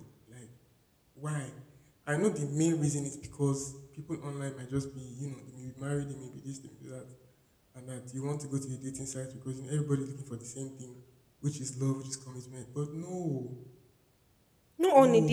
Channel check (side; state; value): both; identical; correlation 1.00